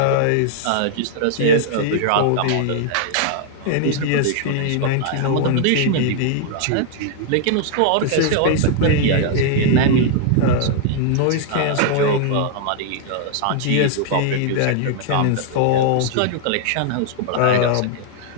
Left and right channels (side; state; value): both; different; correlation -0.01